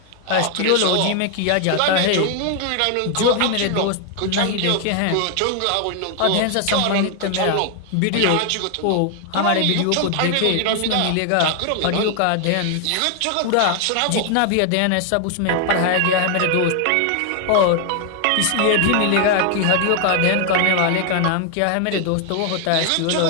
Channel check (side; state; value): both; different; correlation 0.00